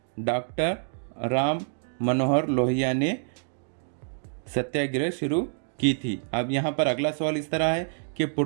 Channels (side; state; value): left; silent; digital silence